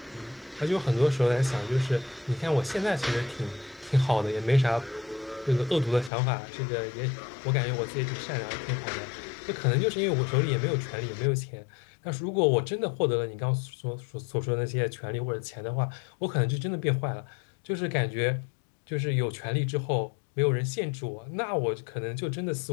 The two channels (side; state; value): right; drops out; at 6.1 s